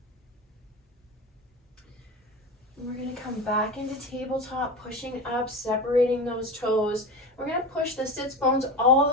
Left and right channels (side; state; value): both; normal; correlation 0.26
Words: We're going to come back into tabletop, pushing up, separating those toes. We're going to push the sits bones all